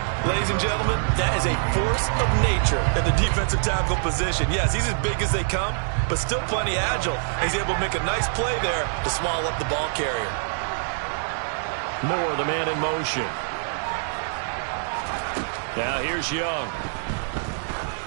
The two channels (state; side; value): silent; left; digital silence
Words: Ladies and gentlemen, that is a force of nature in the defensive tackle position. Yes, he's as big as they come, but still plenty agile. He's able to make a nice play there to small up the ball carrier. Moore, the man in motion. Now here's Young.